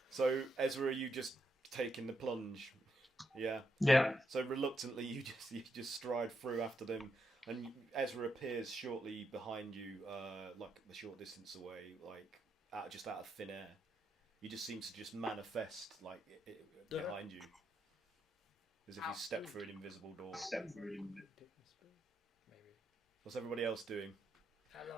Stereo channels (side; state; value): both; normal; correlation 0.81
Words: So Ezra, are you just taking the plunge? Yeah. Yeah. So reluctantly, you just stride through after them, and Ezra appears shortly behind you, like a short distance away, like just out of thin air. He just seems to just manifest like behind you, as if he stepped through an invisible door. Maybe. What's everybody else doing?